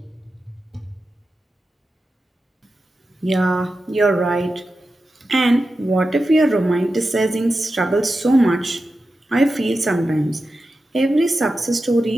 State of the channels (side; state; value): both; normal; correlation 0.91